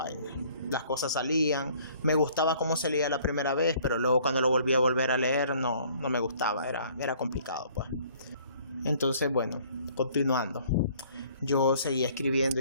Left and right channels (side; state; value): both; inverted; correlation -0.57